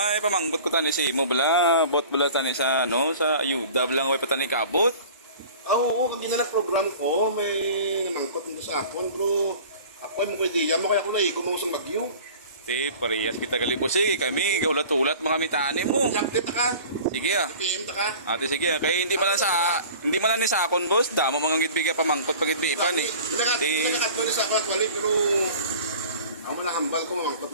pamangkot ko tani si mo bala, bot bala tani sa sa ayuda blang way patani kabot. Oo, kung program ko, may namangkot nito sa akon, pero ako mo ko ideya mo kaya ko na gumausang bagyo. Ti, parehas kita kalibos kami ulat-ulat mga mitani mo. Update ka, Sige PM ta ka. Ate sige kay hindi man lang ni sakon boss, damo mga gidbigay pamangkot pagidbipan eh. Nakakatwa sa ako actually, pero ako malahambal ko mamangkot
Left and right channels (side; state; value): both; inverted; correlation -0.42